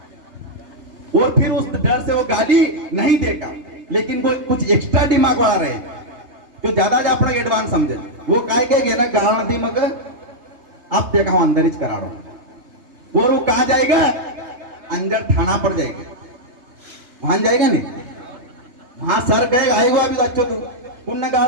और फिर उस डर से वो गाली नहीं देगा। लेकिन वो कुछ एक्स्ट्रा दिमाग वाला रहे जो ज्यादा अपना एडवांस समझे, वो काय के ना गाल दी मग आप देखा हूं अंदर ही करा रहा हूं। वो कहा जाएगा अंदर थाना पर जाएगा, वहां जाएगा नहीं, वहां सर कहेगा आएगो अभी तो अच्छो तू पुण्य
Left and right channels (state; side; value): late; left; 3.3 ms